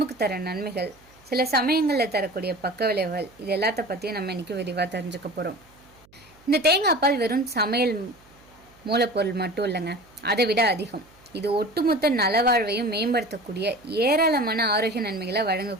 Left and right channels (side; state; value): right; noise; hum, 29 dB below the sound